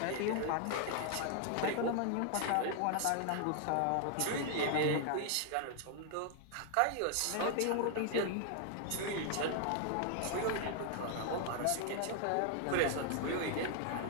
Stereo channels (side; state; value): both; different; correlation 0.00